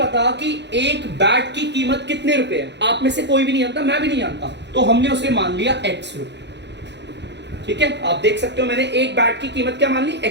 कि एक बैट की कीमत कितने रुपए है, आप में से कोई भी नहीं जानता, मैं भी नहीं जानता, तो हमने उसे मान लिया X रुपए। ठीक है, आप देख सकते हो मैंने एक बैट की कीमत क्या मान ली?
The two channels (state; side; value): late; left; 0.51 ms